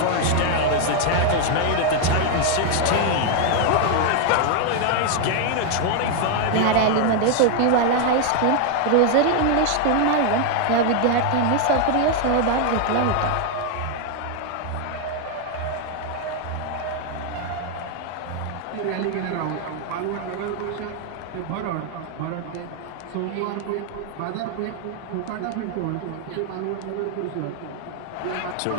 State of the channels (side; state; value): both; different; correlation 0.00